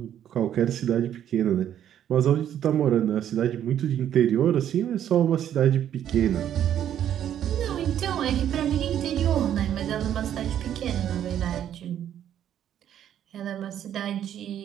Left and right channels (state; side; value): quieter; left; 10.4 dB